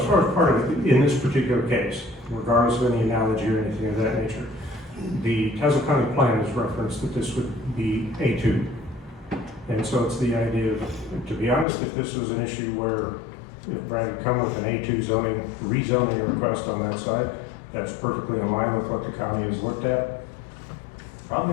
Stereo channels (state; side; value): drops out; right; at 11.7 s